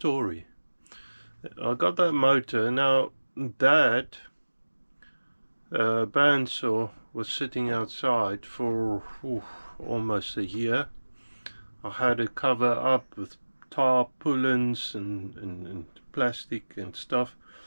I got that motor. Now that bandsaw was sitting outside for almost a year. I had it covered up with tarpaulins and plastic and stuff,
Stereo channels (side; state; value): both; inverted; correlation -1.00